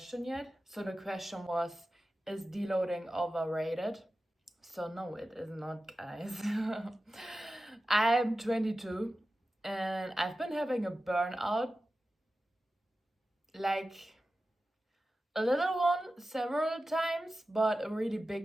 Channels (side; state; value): both; normal; correlation 0.94